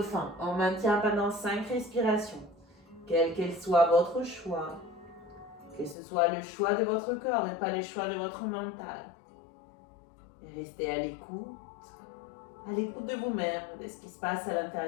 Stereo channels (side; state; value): right; drops out; at 6.0 s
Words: On maintient pendant 5 respirations. Quel qu'elle soit votre choix. Que ce soit le choix de votre corps et pas le choix de votre mental. Restez à l'écoute de vous-même, de ce qui se passe à